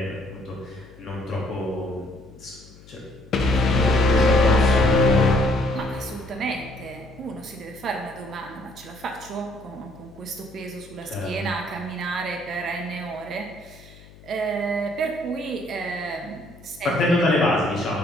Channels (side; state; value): left; noise; hum, 22 dB below the sound